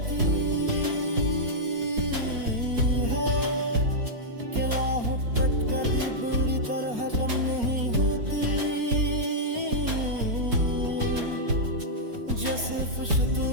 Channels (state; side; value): late; left; 4.3 ms